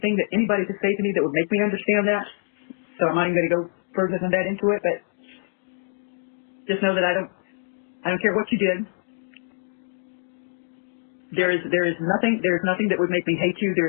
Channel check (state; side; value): silent; right; digital silence